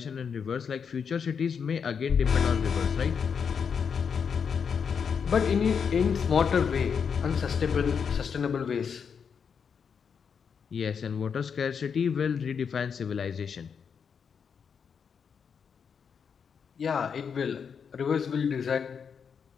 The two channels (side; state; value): right; quieter; 6.6 dB